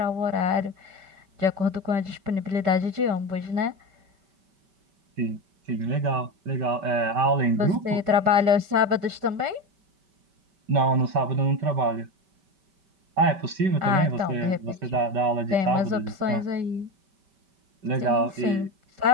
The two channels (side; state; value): left; late; 5.2 ms